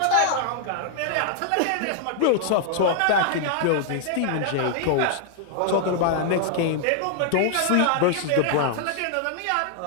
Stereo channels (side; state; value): both; different; correlation -0.01